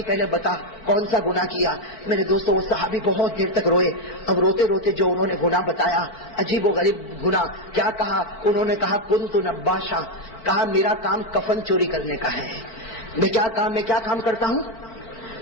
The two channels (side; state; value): right; late; 4.4 ms